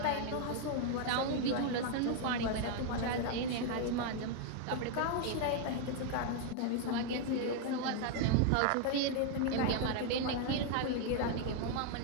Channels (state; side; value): different; both; correlation 0.00